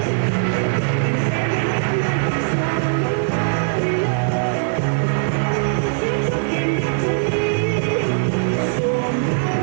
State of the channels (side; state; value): left; silent; digital silence